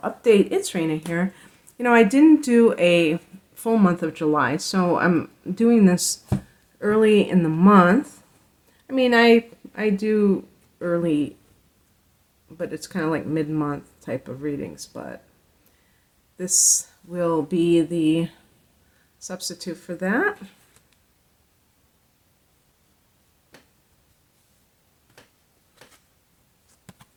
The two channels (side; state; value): both; identical; correlation 1.00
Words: update. It's Raina here. I didn't do a full month of July, so I'm doing this early in the month. I do early, but it's kind of like mid-month type of readings, but this will be the substitute for that.